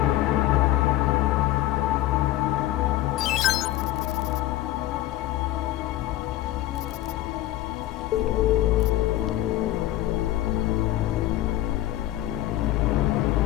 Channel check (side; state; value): right; quieter; 14.9 dB